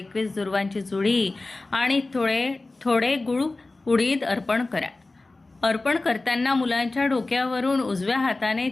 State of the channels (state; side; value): quieter; right; 3.2 dB